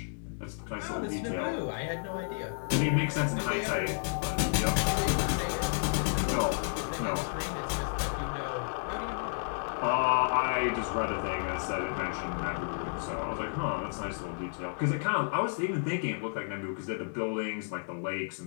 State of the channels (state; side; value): silent; right; digital silence